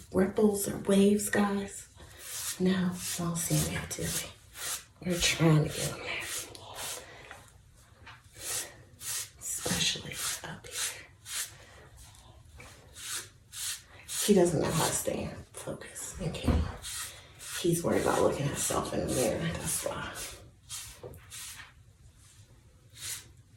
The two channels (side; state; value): both; identical; correlation 1.00